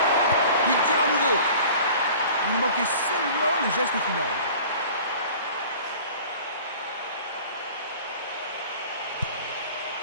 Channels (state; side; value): inverted; both; correlation -0.44